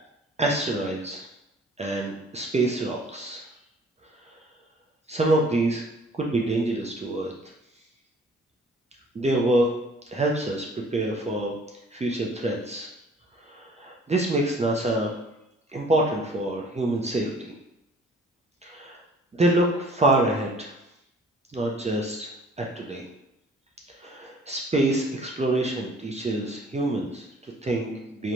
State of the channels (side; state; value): both; normal; correlation 0.53